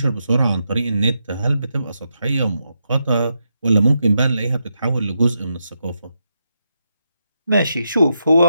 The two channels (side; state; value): both; inverted; correlation -0.84